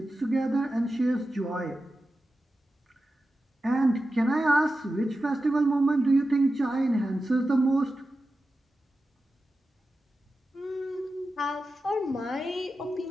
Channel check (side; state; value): both; normal; correlation 0.92